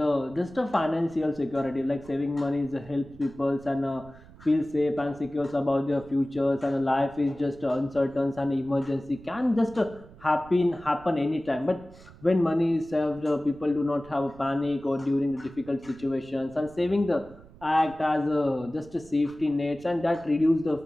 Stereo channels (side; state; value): right; noise; rumble, 22 dB below the sound